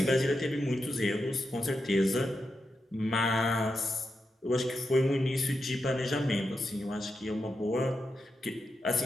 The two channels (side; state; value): both; normal; correlation 0.87